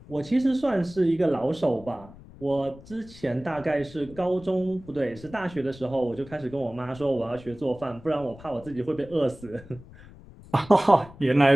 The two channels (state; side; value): noise; left; rumble, 20 dB below the sound